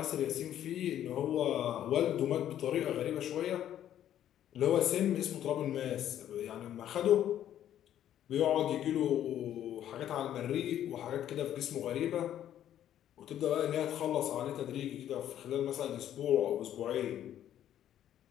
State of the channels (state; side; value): quieter; right; 11.1 dB